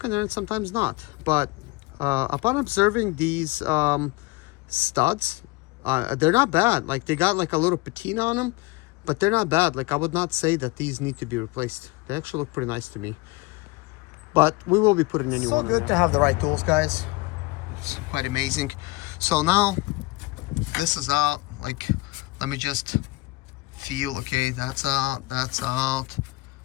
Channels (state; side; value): quieter; right; 22.0 dB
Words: in there and sometimes not. But upon observing these studs, they're not bad. Like, they got like a little patina on them, but they're not bad. Like, I would not say that these need to be replaced. They actually look pretty nice to me. but we will be putting a new one. So good to have the right tools, guys. It's quite amazing. So now this is out. Like, let me just feel. Okay, that's out. That's out.